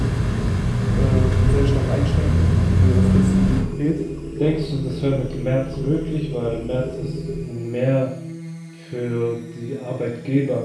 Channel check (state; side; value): identical; both; correlation 1.00